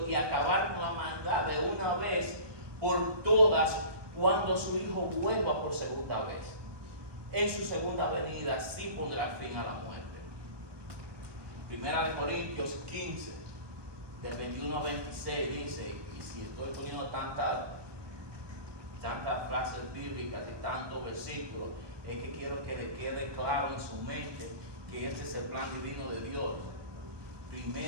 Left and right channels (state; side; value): late; left; 1.2 ms